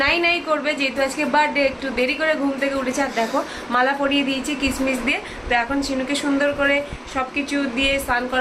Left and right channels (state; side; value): identical; both; correlation 1.00